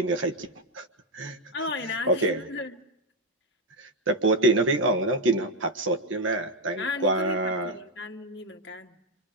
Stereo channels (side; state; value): both; normal; correlation 0.04